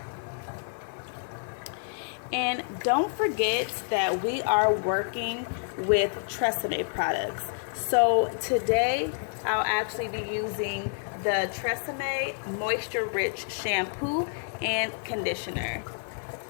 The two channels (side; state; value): right; silent; 59 dB below the other